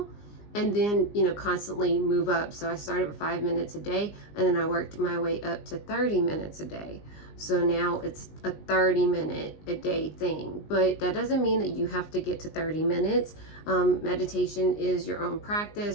and then constantly move up. So I started with 5 minutes a day, and then I worked my way up to 30 minutes a day. So now it's a 30-minute a day thing, but that doesn't mean that you have to get to 30 minutes. Meditation is your own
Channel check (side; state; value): right; late; 19 ms